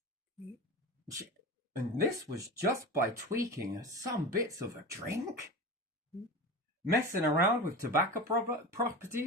And this was just by tweaking some bits of a drink. Messing around with tobacco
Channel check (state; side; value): normal; both; correlation 0.28